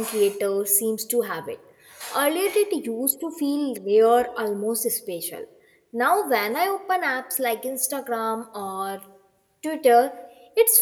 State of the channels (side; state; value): both; identical; correlation 1.00